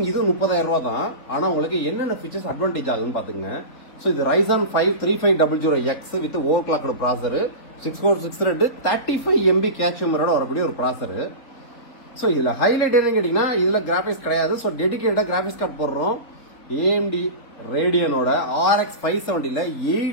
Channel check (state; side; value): late; right; 4.1 ms